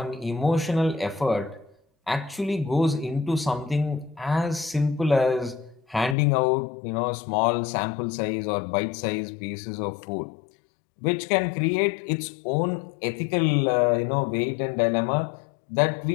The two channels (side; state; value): right; drops out; at 6.2 s